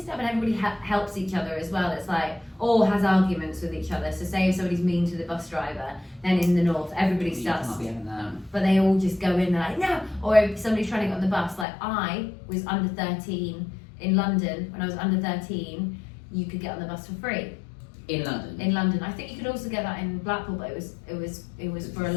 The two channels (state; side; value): drops out; right; at 11.7 s